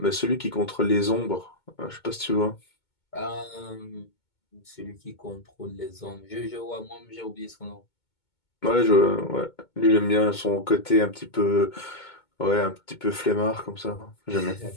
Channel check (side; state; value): right; late; 2.2 ms